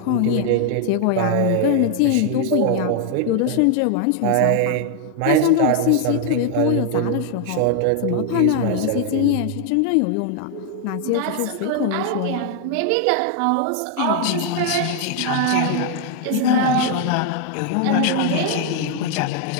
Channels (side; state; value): both; different; correlation 0.00